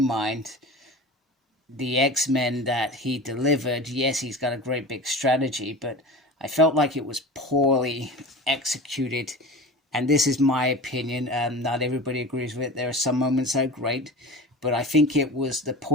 the X-Men that he delivered, yes, he's got a great big strategy, but I felt like it was poorly executed. And this is my opinion. Not everybody agrees with it. There are some moments that are great, but I think it was the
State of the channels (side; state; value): both; normal; correlation 0.33